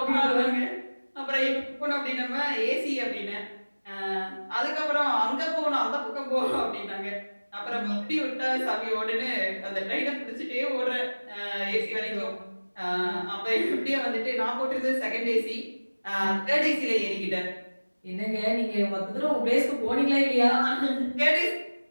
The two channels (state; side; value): inverted; both; correlation -1.00